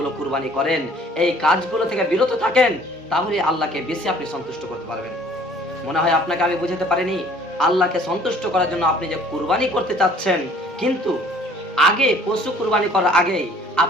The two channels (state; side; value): normal; both; correlation 0.55